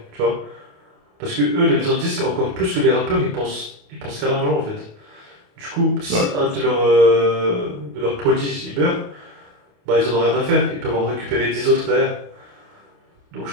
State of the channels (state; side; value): late; left; 28 ms